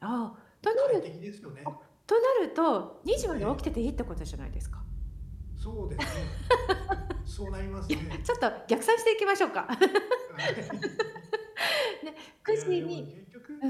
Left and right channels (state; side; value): identical; both; correlation 1.00